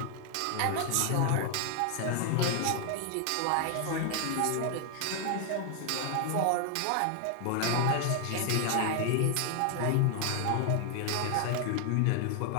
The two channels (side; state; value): both; different; correlation 0.00